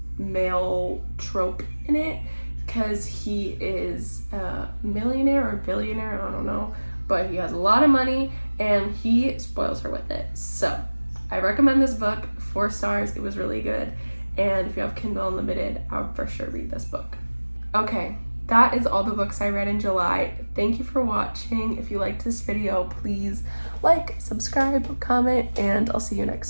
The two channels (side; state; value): both; inverted; correlation -1.00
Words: male trope in it, because he is a millionaire or billionaire, I don't know, but he has a lot of money and he spoils her with it. So I recommend this book, 4 stars. It was really good, and if you have Kindle Unlimited, I would for sure read this book. Okay, that is all the books I read in July. Thank you for watching. If you liked this video, please like, subscribe, comment, and I'll see you